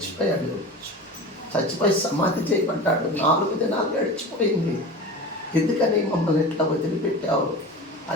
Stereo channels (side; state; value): both; normal; correlation 0.32